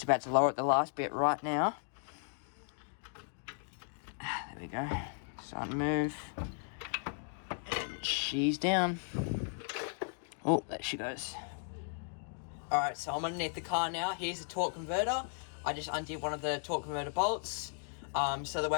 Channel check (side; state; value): right; silent; 54 dB below the other